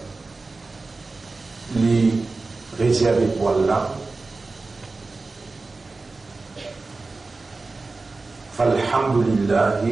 les réservé pour Allah.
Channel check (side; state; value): left; quieter; 3.6 dB